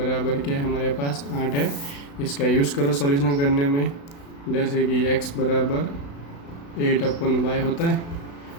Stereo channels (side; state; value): right; late; 35 ms